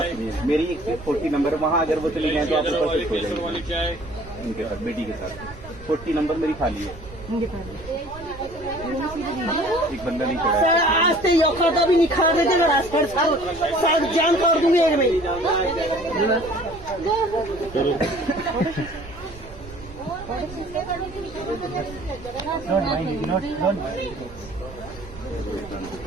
सुनिए, मेरी एक सीट 40 नंबर, वहाँ अगर वो चली गए तो आप ऊपर शिफ्ट हो जाएंगे उनके साथ, बेटी के साथ। 40 नंबर मेरी खाली है, एक बंदा नहीं चढ़ा है। आज से औकात भी निखार देते ना, साथ जान तोड़ दूंगी एक में।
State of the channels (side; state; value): right; noise; rumble, 16 dB below the sound